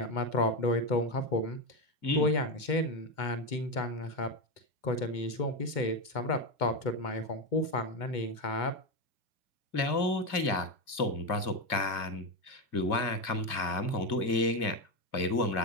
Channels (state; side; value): late; right; 2.3 ms